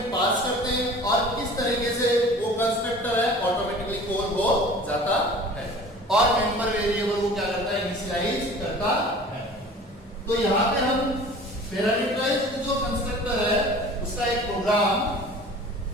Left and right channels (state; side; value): normal; both; correlation 0.43